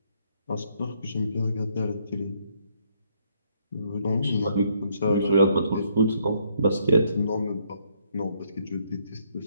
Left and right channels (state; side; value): inverted; both; correlation -0.72